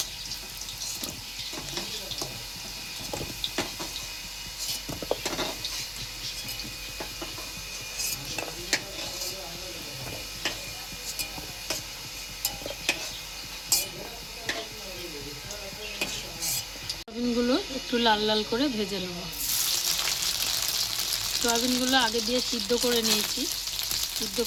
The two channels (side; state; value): both; identical; correlation 1.00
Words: সোয়াবিনগুলো একটু লাল লাল করে ভেজে নেব। সোয়াবিনগুলো আগে দিয়ে সিদ্ধ করে নিয়েছি, সিদ্ধ